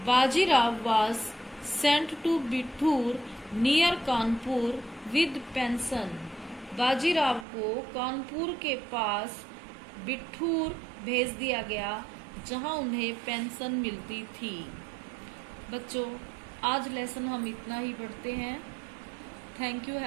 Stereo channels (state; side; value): drops out; left; at 7.5 s